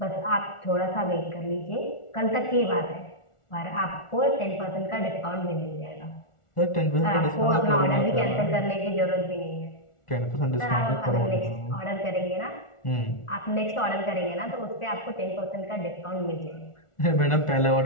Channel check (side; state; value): right; late; 1.4 ms